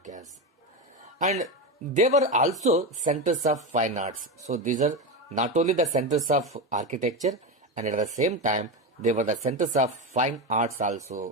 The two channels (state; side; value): normal; both; correlation 0.16